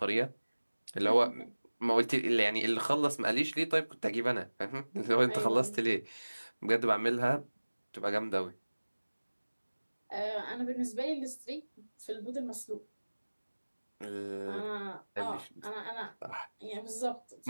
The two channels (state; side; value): inverted; both; correlation -1.00